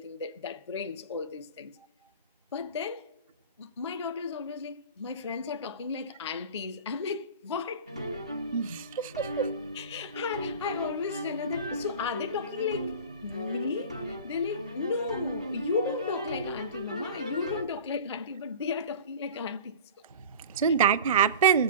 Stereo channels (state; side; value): inverted; both; correlation -0.36